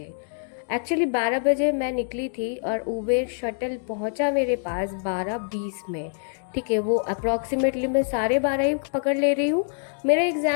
एक्चुअली 12 बजे मैं निकली थी और उबेर शटल पहुँचा मेरे पास 12:20 में। ठीक है, वो अप्रॉक्सीमेटली मैं 12:30 ही पकड़ ले रही हूँ। मेरा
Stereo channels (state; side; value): silent; right; digital silence